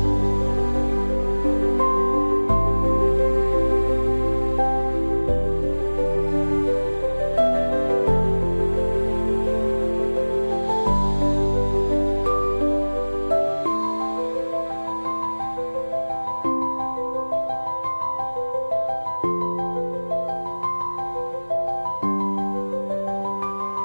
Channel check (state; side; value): inverted; both; correlation -1.00